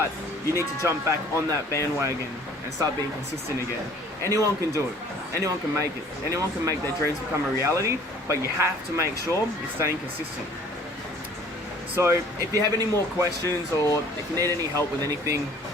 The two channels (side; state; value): both; normal; correlation 0.52